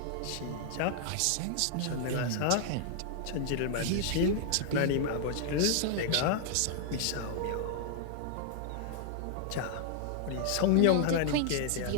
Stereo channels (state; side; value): different; both; correlation 0.00